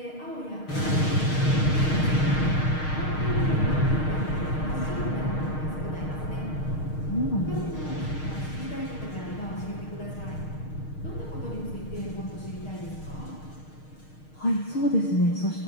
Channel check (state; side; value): late; right; 6.5 ms